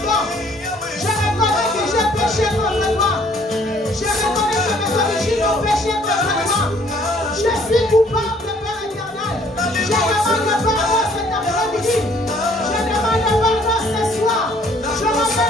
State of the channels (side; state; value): both; normal; correlation 0.60